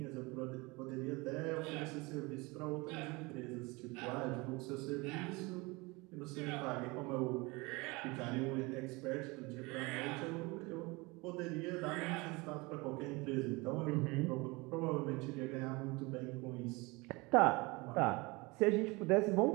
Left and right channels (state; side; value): quieter; left; 25.0 dB